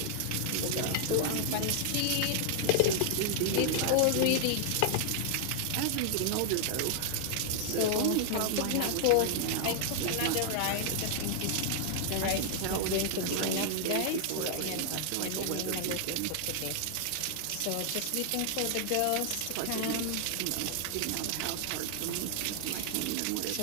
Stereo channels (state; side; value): different; both; correlation 0.00